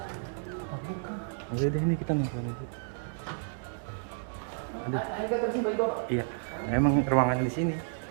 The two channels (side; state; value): left; silent; 57 dB below the other